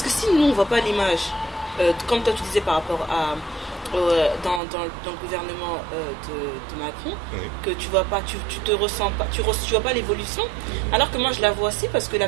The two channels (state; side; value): drops out; left; at 4.6 s